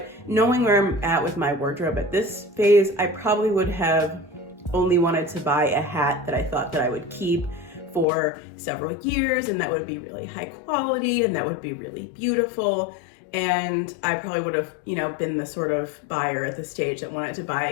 knowing where I'm at with my wardrobe at this phase, I probably would have only wanted to buy a hat that I thought that I would keep for several years, and that would be really high quality and that would be really beautiful. And I probably would have, you know, been the sort of buyer at this stage that wanted to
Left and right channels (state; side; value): drops out; right; at 8.1 s